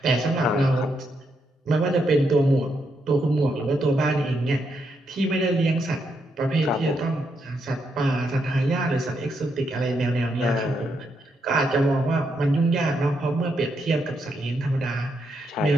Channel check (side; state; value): both; normal; correlation 0.79